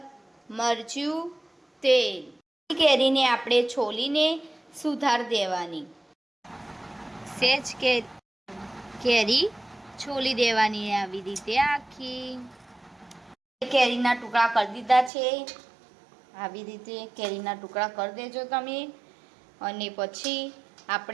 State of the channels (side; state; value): left; drops out; at 15.1 s